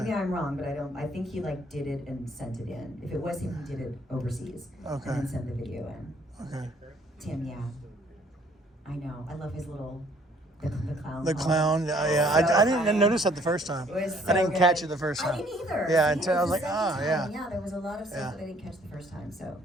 I'm wrong, but I think he like did it and sent it in. If it was him, he did it overseas. Okay. And then sent the video in. Okay. Tim, yeah. I know. I love his little the clown. The clown. Yeah. I didn't notice that the first time. It was I didn't so catch good. it the first I time. didn't either. Yeah, See, until I it was like, the second time. yeah. Yeah, there was a lot of stuff Yeah. that I didn't catch the first time, so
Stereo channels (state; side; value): normal; both; correlation 0.61